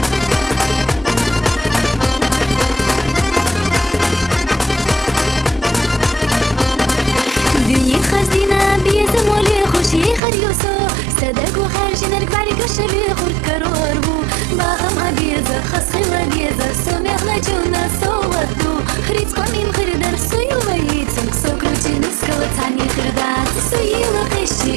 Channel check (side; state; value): left; drops out; at 10.2 s